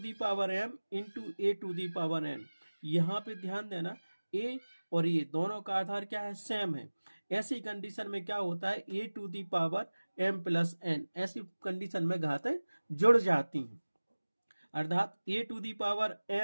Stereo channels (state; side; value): inverted; both; correlation -1.00